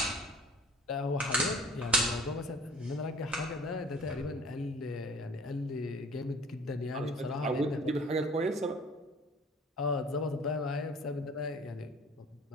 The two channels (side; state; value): both; normal; correlation 0.48